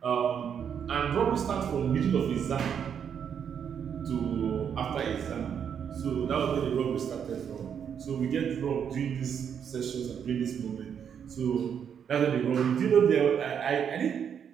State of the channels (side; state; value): left; quieter; 7.9 dB